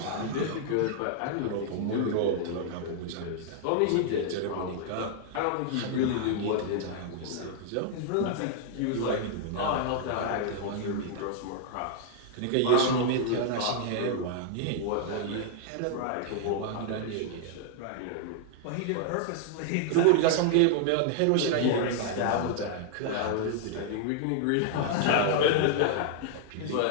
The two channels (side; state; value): both; different; correlation -0.01